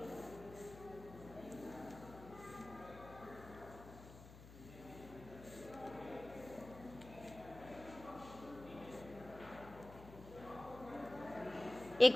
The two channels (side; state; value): left; noise; hum, 16 dB below the sound